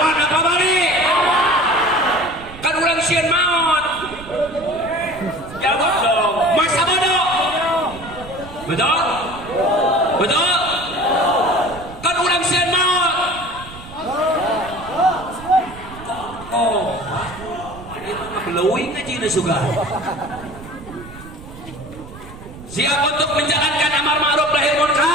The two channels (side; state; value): right; noise; rumble, 16 dB below the sound